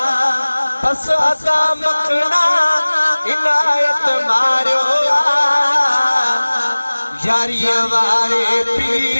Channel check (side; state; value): both; inverted; correlation -1.00